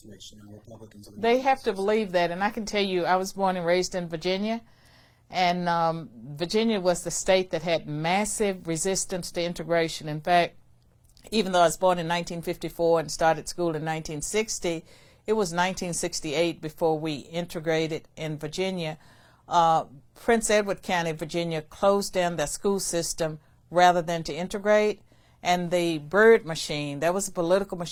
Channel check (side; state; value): both; identical; correlation 1.00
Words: Republicans are... They have to believe that, and I can tell you, I was born and raised in Virginia, and Virginia was the state that had massive resistance to integration. In fact, even though I was born in 1954 and started school in 1960, it was 1968 before we integrated in Virginia. Prince Edward County, Virginia, closed down their school system rather than to integrate. And the Byrd machine, that was a political